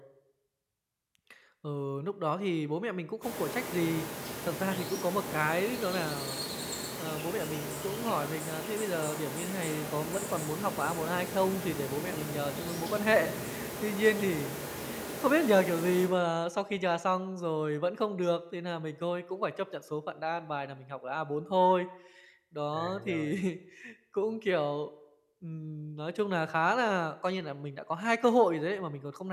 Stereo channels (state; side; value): identical; both; correlation 1.00